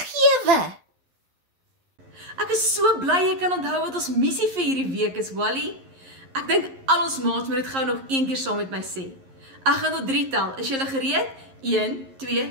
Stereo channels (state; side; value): late; left; 11 ms